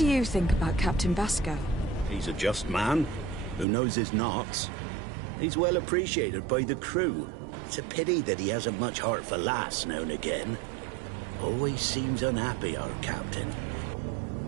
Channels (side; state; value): left; drops out; at 3.7 s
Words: you think about Captain Vasco? He's a just man who knows his knots. He's well appreciated by the crew. It's a pity that he hasn't much heart for lass now and again. Always seems unhappy, our captain.